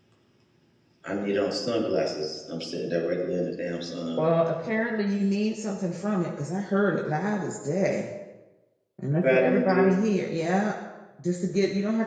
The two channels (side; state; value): both; identical; correlation 1.00